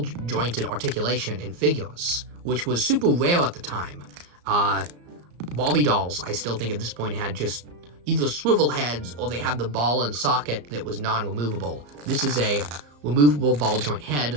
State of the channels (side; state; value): left; late; 34 ms